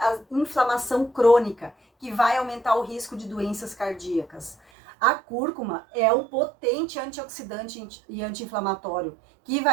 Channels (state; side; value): drops out; left; at 4.5 s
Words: a inflamação crônica, que vai aumentar o risco de doenças cardíacas. A cúrcuma é um potente antioxidante e anti-inflamatório, que